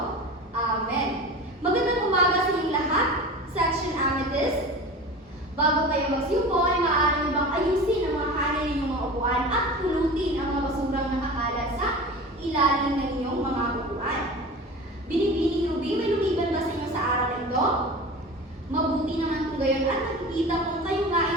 Amen. Magandang umaga sa inyong lahat, Section Amethyst. Bago kayo magsiupo, ay maaari nyo bang ayusin ang mga kanin ninyong mga upuan at pulutin ang mga basurang nakakalat sa ilalim ng inyong mga upuan. Binibining Ruby, may lumiban ba sa inyo sa araw na ito? Mabuti naman kung gayon at nakikita kung kayo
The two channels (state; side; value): normal; both; correlation 0.34